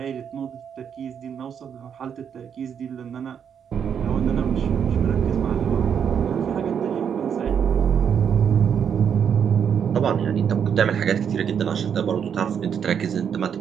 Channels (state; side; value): quieter; left; 7.8 dB